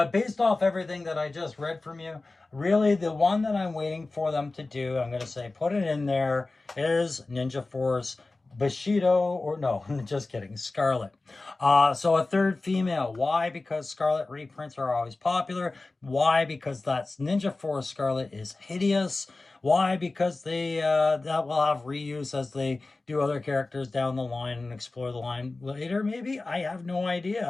based off everything that I just read from you, really the one that I'm waiting for them to do, I'm going to say put it in there, is Ninja Force Bushido, or no, just kidding, Scarlet. So a third female. Why? Because Scarlet reprints are always popular. Why? Because that's Ninja Force Scarlet is hideous. Why? Because they that will have reuse as they do other characters down the line and explore the line later. Maybe, I have no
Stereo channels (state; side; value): quieter; right; 3.3 dB